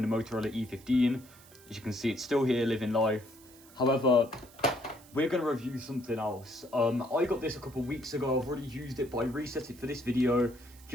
the Motorola E15. As you can see, it's still here living life. However, we're going to review something else. I got this a couple weeks ago. I've already used it, but I reset it for this video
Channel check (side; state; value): right; noise; hiss, 23 dB below the sound